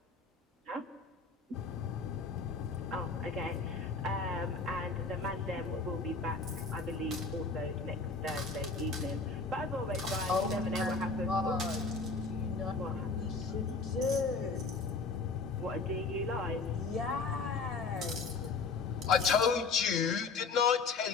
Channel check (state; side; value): quieter; right; 4.2 dB